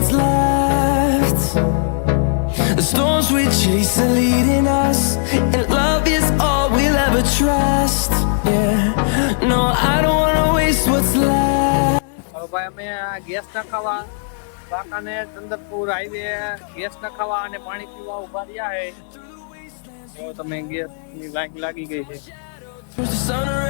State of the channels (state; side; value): silent; right; digital silence